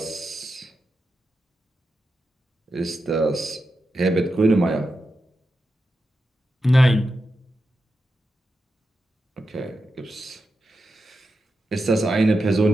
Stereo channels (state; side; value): normal; both; correlation 0.89